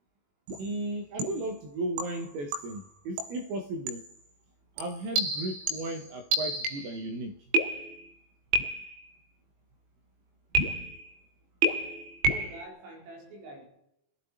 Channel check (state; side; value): late; left; 21 ms